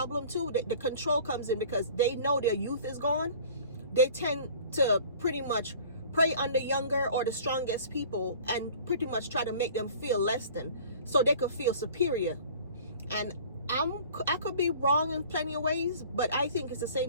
too. The control comes in because they know their youth is gone. They tend to pretty much prey on the younger or the strongest people and pretty much try to make them feel less than, so they could feel superior. And I could be wrong in plenty of ways, but I think it's the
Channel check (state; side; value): inverted; both; correlation -0.46